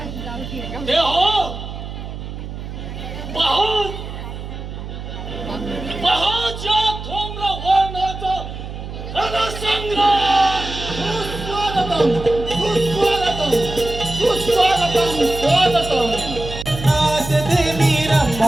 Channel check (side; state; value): right; noise; hum, 9 dB below the sound